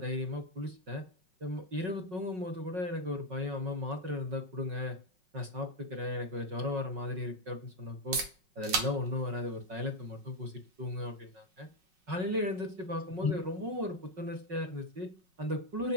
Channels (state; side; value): late; left; 5.4 ms